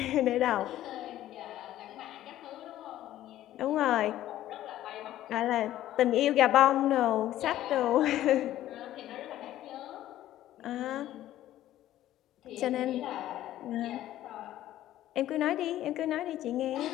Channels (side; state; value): right; quieter; 13.5 dB